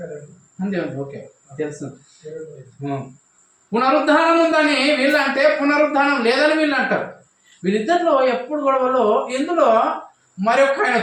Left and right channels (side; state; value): both; identical; correlation 1.00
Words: అంతే ఓకే తెలుసు. పునరుద్ధానం ఉందని వీళ్ళు అంటే పునరుద్ధానం లేదని వీళ్ళు అంటారు. వీళ్ళిద్దరిలో ఎప్పుడు గొడవలో ఇందులో మరొక ఆయన